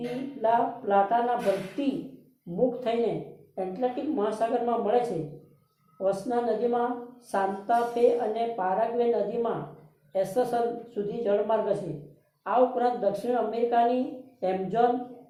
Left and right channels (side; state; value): both; identical; correlation 1.00